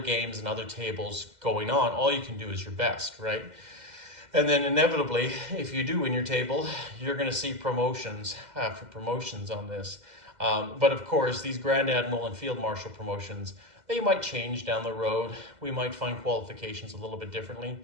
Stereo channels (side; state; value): left; late; 2.0 ms